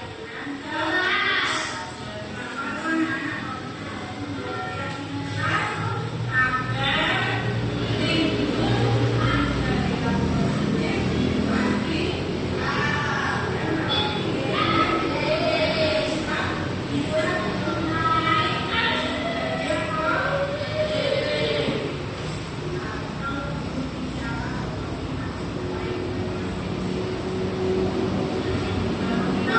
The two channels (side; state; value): both; identical; correlation 1.00